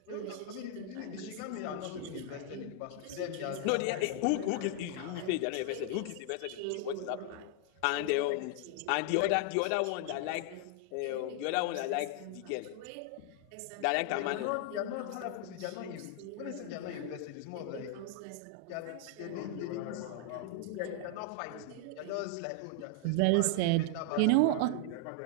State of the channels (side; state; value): both; different; correlation 0.00